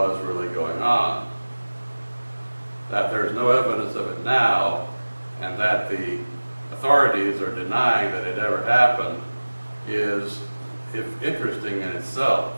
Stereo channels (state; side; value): inverted; both; correlation -1.00